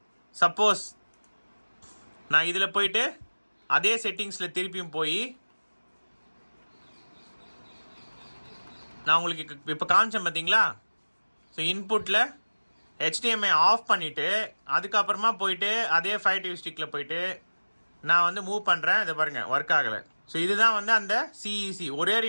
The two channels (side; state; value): both; inverted; correlation -1.00